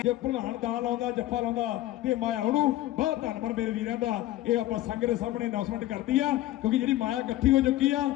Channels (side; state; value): right; quieter; 15.3 dB